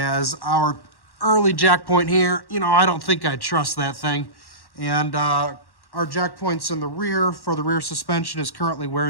our early jack point here, you know, I don't think I'd trust that thing. And our jack points in the rear for the rear suspension is currently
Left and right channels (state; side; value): late; right; 1.1 ms